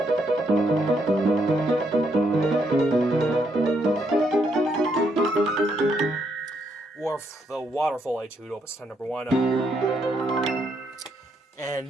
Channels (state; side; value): normal; both; correlation 0.76